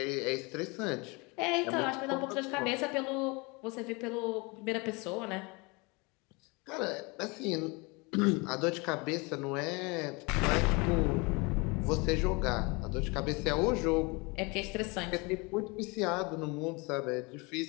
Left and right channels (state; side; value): quieter; right; 27.8 dB